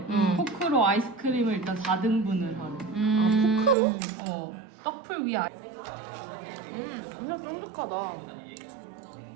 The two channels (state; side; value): drops out; left; at 3.8 s